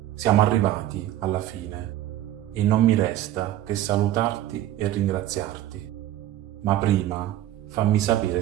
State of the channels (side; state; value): left; quieter; 13.3 dB